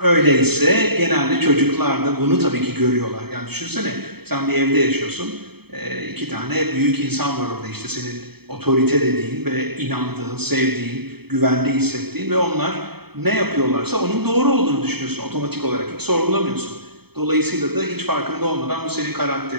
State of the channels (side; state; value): left; late; 0.97 ms